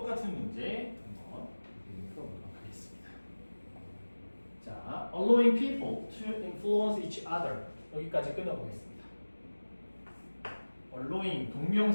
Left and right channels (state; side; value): inverted; both; correlation -1.00